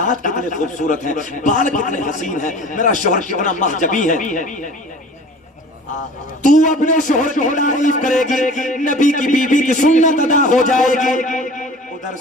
کتنے خوبصورت ہیں, بال کتنے حسین ہیں, میرا شوہر کتنا محجبی ہے. تو اپنے شوہر کی تعریف کرے گی, نبی کی بیوی کی سنت ادا ہو جائے گی, ادھر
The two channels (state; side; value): normal; both; correlation 0.43